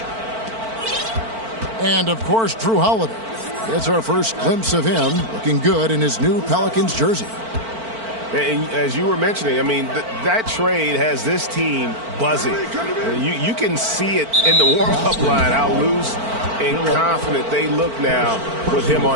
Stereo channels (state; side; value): late; left; 4.5 ms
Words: And, of course, Drew Holiday. It's our first glimpse of him looking good in his new Pelicans jersey. And as you were mentioning, I mean, that trade has this team buzzing. You can see it in the warm-up line, how loose and confident they look now with him